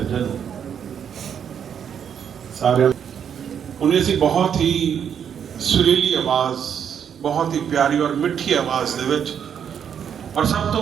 सारे उन्हें सी बहुत ही सुरीली आवाज़, बहुत ही प्यारी और मिठी आवाज़ दे विच, और सब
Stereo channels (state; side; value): quieter; left; 8.2 dB